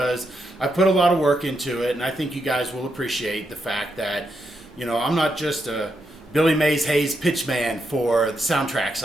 I put a lot of work into it, and I think you guys will appreciate the fact that, I'm not just a Billy Mays Hayes pitchman for the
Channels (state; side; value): normal; both; correlation 0.82